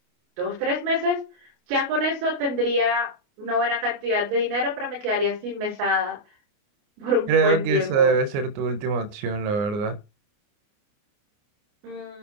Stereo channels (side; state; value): left; late; 29 ms